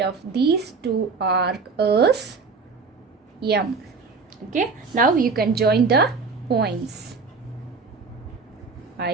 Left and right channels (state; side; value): quieter; left; 4.7 dB